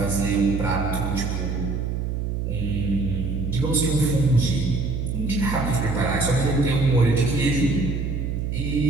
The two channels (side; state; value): right; noise; hum, 2 dB below the sound